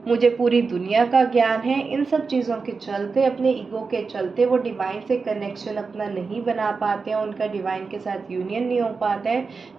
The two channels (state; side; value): quieter; left; 4.7 dB